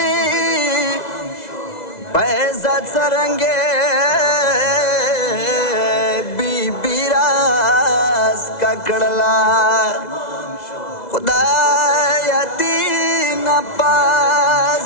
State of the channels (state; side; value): late; right; 2.0 ms